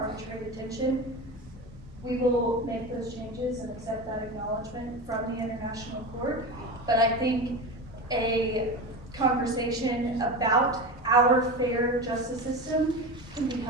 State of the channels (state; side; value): normal; both; correlation 0.25